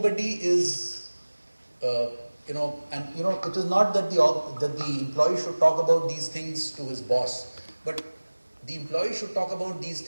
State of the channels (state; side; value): inverted; both; correlation -1.00